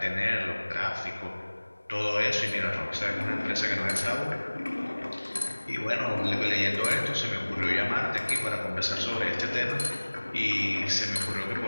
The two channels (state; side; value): inverted; both; correlation -1.00